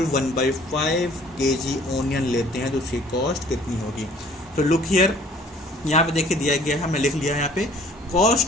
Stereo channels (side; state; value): both; normal; correlation 0.54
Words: 1/5 केजी ओनियन लेते हैं तो उसकी कॉस्ट कितनी होगी। तो लुक हियर, यहाँ पे देखिए दिया गया है, हमने लिख लिया है यहाँ पे,